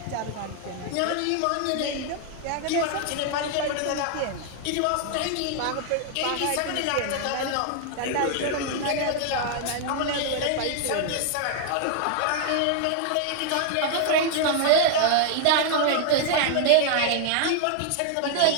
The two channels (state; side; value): different; both; correlation 0.00